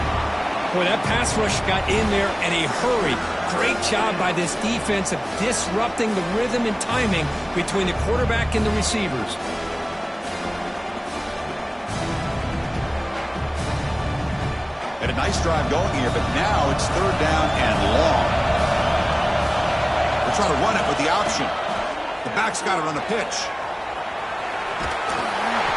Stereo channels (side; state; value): both; identical; correlation 1.00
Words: Boy, that pass rush got in there in a hurry. Great job by this defense of disrupting the rhythm and timing between the quarterback and the receivers. Had a nice drive going here, but now it's third down and long. They're trying to run it with the option. The back's got it on the pitch.